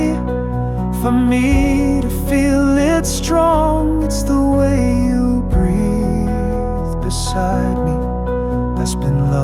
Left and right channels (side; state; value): both; identical; correlation 1.00